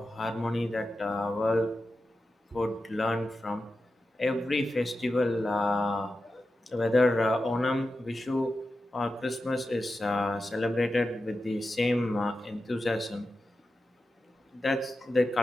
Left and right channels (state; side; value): normal; both; correlation 0.91